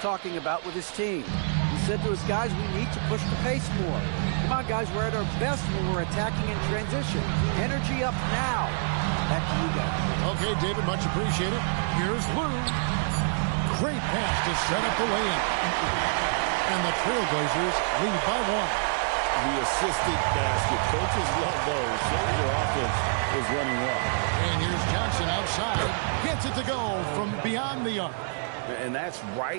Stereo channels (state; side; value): silent; left; 60 dB below the other